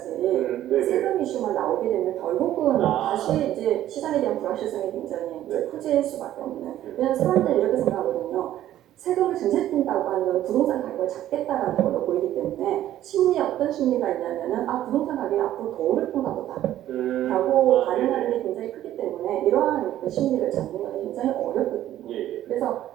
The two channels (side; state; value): left; quieter; 12.8 dB